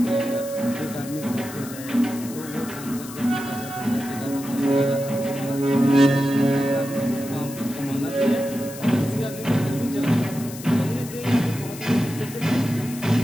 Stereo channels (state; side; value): noise; left; hiss, 14 dB below the sound